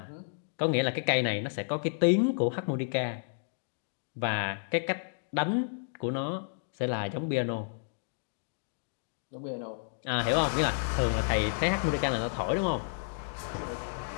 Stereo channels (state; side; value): silent; right; digital silence